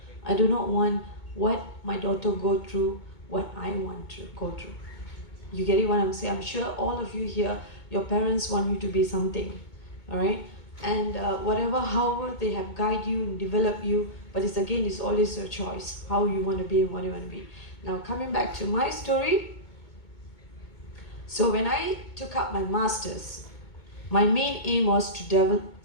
I do not want what my daughter go through, what I want to go through. You get it what I'm saying? I'm sure all of you here, your parents want you to be something, all right? And however they have guided you and developed you, but it's always your choice, how you want to be and what you want to be. Now, coming back to my story. So when I took up my master's, my main aim was to develop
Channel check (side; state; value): right; late; 2.2 ms